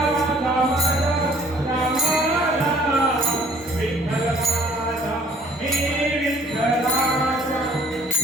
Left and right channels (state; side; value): normal; both; correlation 0.56